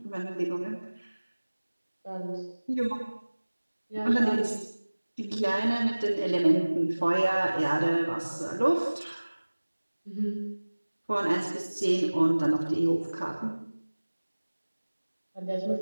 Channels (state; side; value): inverted; both; correlation -1.00